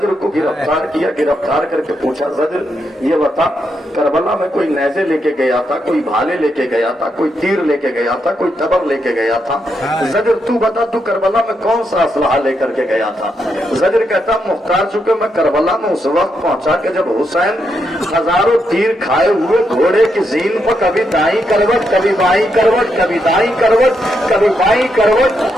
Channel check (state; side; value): normal; both; correlation 0.81